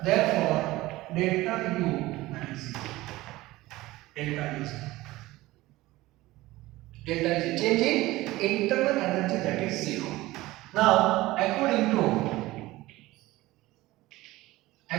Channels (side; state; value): left; quieter; 18.3 dB